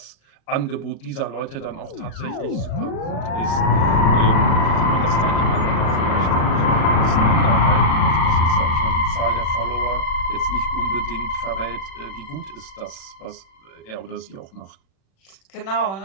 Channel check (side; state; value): right; late; 36 ms